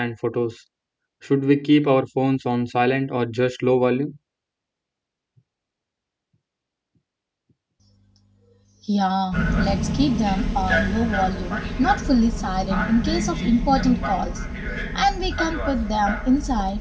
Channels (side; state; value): both; identical; correlation 1.00